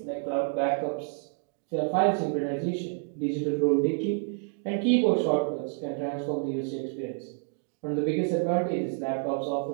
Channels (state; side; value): silent; left; 59 dB below the other